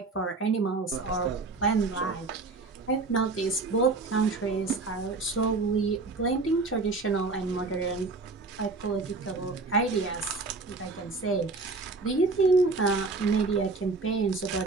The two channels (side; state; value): left; quieter; 3.8 dB